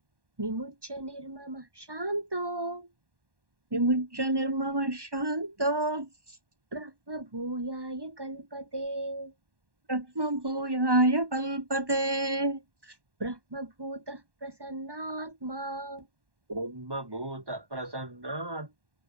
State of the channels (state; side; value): late; left; 1.1 ms